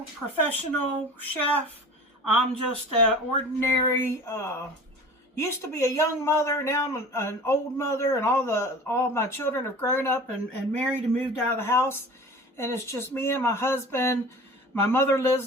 professional chef. I'm just an ordinary, used to be a young mother, now I'm an old mother, and all my children have grown up and married and moved out of the house. And it's just me and my husband. My mother lives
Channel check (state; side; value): normal; both; correlation 0.40